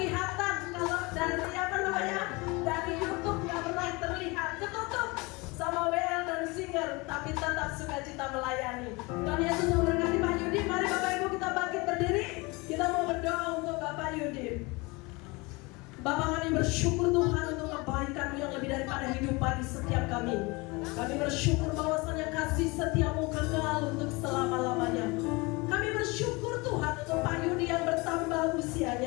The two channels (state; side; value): quieter; right; 25.6 dB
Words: kalau dari apa namanya, dari YouTube nggak pernah terlihat, ketutup sama WL dan Singer, tapi tetap sukacita melayani. Tuhan Yesus memberkati Pak Yudi. Mari Bapak Ibu kita bangkit berdiri. Kita mau berdoa untuk Bapak Yudi. Bapak kami bersyukur Tuhan untuk kebaikan-Mu yang lebih daripada hidup bagi setiap kami. Kami bersyukur bahwasannya kasih setiamu kekal untuk selama-lamanya. Kami bersyukur Tuhan untuk Pak Yudi yang bertambah